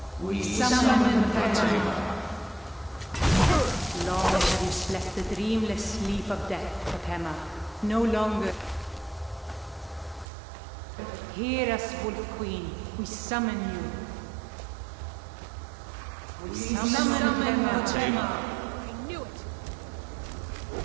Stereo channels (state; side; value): drops out; left; at 10.2 s